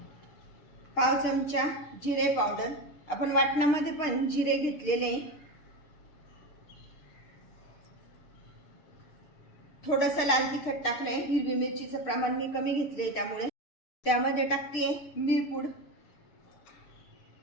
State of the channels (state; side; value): late; right; 6.6 ms